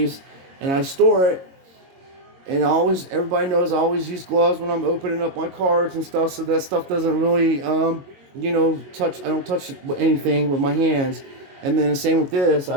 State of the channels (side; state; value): left; late; 22 ms